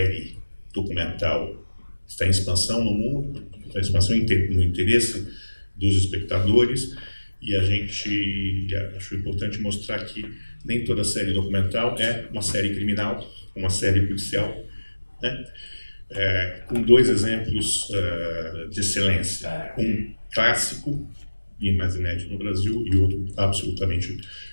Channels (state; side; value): inverted; both; correlation -1.00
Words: documental está em expansão no mundo, está em expansão no interesse dos espectadores, e a gente acho importante mostrar que nem toda série documental é uma série criminal, uma série policial, né? Com 2 exemplos de excelência, um clássico e mais inédito no Brasil e outro absolutamente